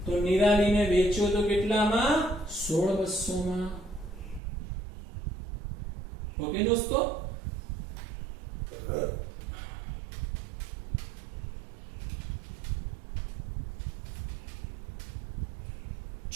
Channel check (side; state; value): left; drops out; at 4.4 s